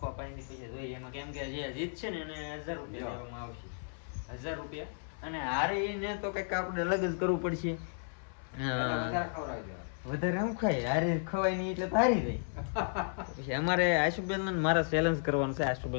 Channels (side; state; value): right; silent; 55 dB below the other